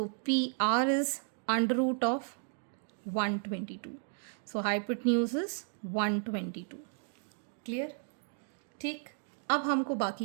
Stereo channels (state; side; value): silent; left; 55 dB below the other